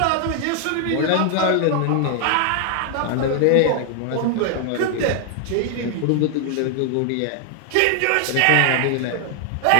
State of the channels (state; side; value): different; both; correlation 0.00